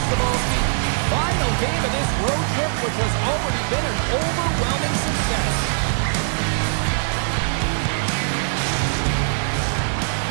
Cebulski. Final game of this road trip, which has already been an overwhelming success.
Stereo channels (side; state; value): left; silent; digital silence